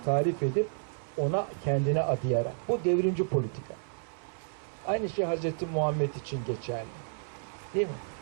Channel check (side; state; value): left; silent; 57 dB below the other